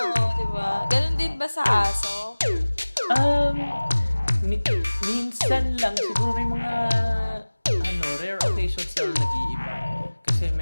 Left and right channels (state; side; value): inverted; both; correlation -1.00